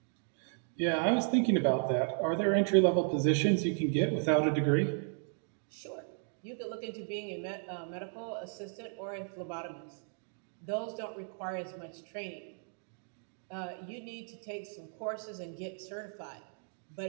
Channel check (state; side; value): silent; left; 55 dB below the other